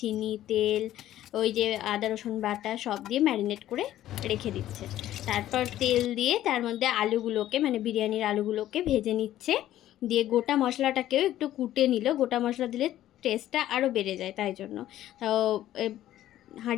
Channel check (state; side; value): quieter; right; 13.1 dB